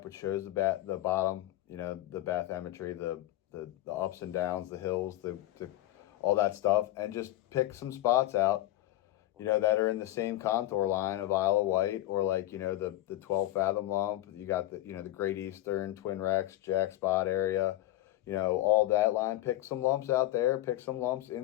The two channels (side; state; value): right; quieter; 15.0 dB